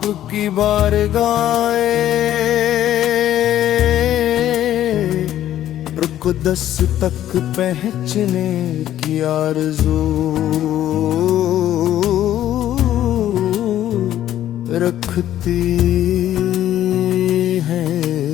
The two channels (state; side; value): quieter; right; 12.2 dB